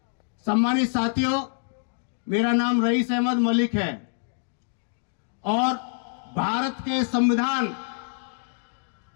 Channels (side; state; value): right; silent; 59 dB below the other